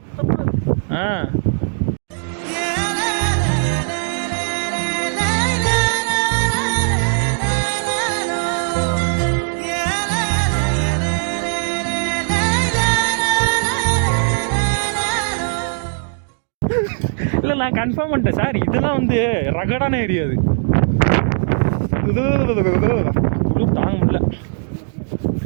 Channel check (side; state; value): left; silent; digital silence